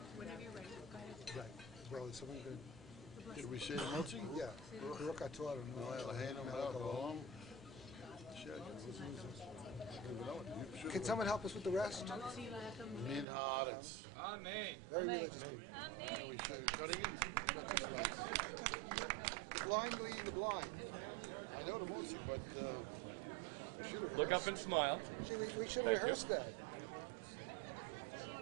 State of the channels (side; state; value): left; drops out; at 13.2 s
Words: Well, is someone good? Did we say the Motzi? Yeah. Baruch atah Adonai Eloheinu melech haolam. Can someone help us with the rest? Min haaretz. Amen. Very religious people. Amen. We should cutting it. The blind leading the blind. I know the Motzi, but we should have rehearsed. Look up and smile. See, we should have rehearsed that.